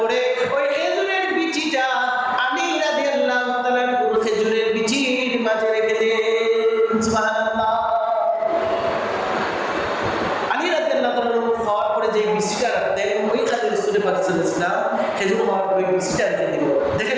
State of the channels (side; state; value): both; identical; correlation 1.00